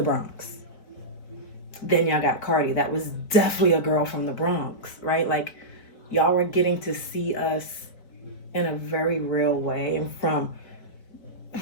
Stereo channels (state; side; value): late; right; 4.5 ms